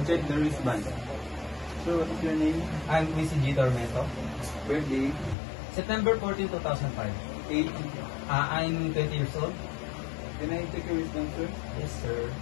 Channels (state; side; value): drops out; right; at 5.4 s